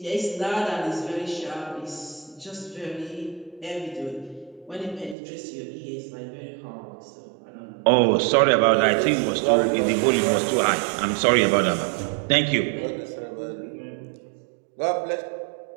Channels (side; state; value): left; drops out; at 5.2 s